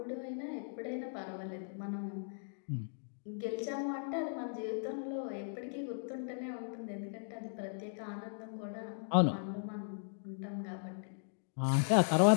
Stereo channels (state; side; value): silent; right; digital silence